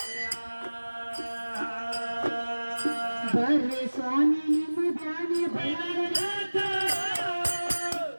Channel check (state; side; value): inverted; both; correlation -1.00